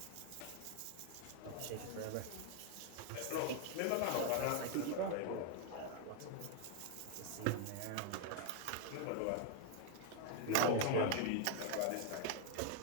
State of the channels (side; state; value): both; different; correlation 0.01